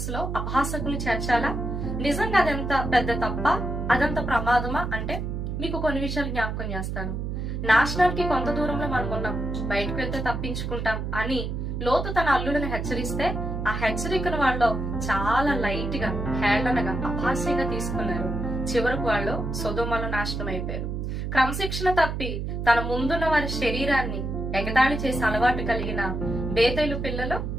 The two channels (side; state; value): right; noise; hum, 3 dB below the sound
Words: అపహాసకులు చేర్చాలా? నిజంగా అదంత పెద్ద తప్ప, అదంత ప్రమాదమా అంటే మీకు కొన్ని విషయాలు జ్ఞాపకం చేస్తాను. నాశనానికి కొంత దూరంలో మనం ఉన్నాం, బయటకు వెళ్తే తప్పించుకుంటాం అని లోతు తన అల్లుడిని హెచ్చరిస్తే ఆ హెచ్చరికను వాళ్ళు చాలా లైట్ గా, హేళనగా, అపహాస్యంగా తీసుకున్నారు. చివరకు వాళ్ళు సొదొమలో నాశనం అయిపోయారు. క్రమశిక్షణ తప్పి తన ముందున్న వారి శరీరాన్ని ఎగతాళి చేసి అలవాటు కలిగిన బేతేలు పిల్లలు